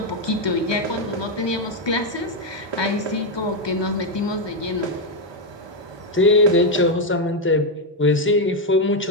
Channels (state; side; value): normal; both; correlation 0.03